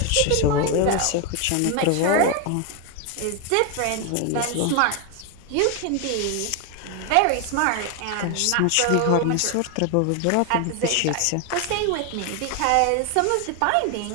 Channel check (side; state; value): both; different; correlation 0.01